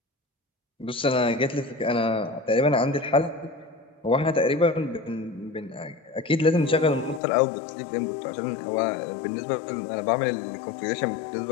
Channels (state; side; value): drops out; right; at 7.2 s